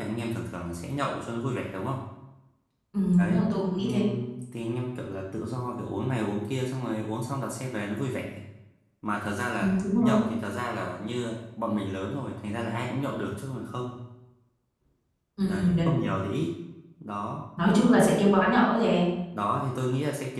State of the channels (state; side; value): identical; both; correlation 1.00